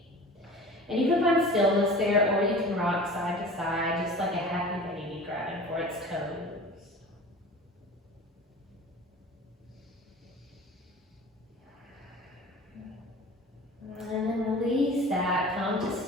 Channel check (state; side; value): normal; both; correlation 0.40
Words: And you can find stillness there, or you can rock side to side, just like a happy baby grabbing for its toes. And then release that, come to